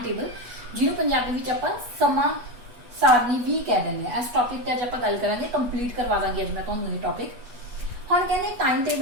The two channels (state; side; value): late; left; 8.2 ms